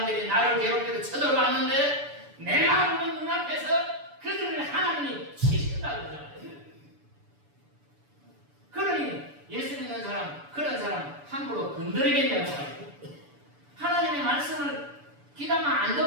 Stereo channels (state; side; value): late; left; 6.9 ms